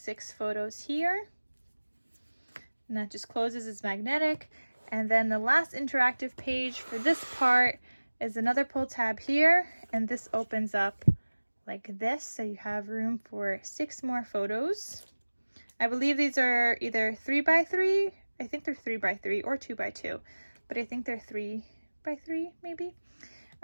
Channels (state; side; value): inverted; both; correlation -1.00